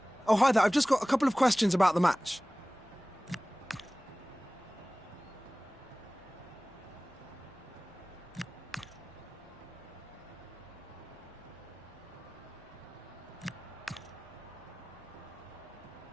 Oh, hi there. I've just got a couple of questions about the match.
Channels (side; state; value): left; noise; rumble, 29 dB below the sound